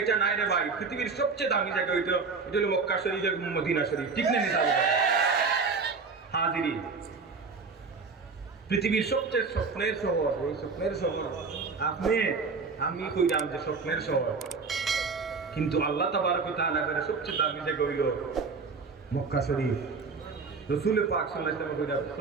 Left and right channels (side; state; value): left; quieter; 4.7 dB